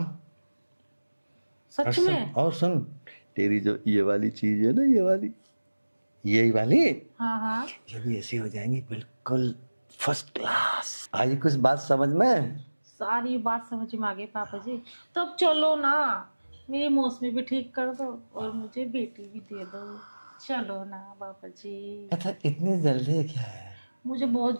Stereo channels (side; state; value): both; inverted; correlation -1.00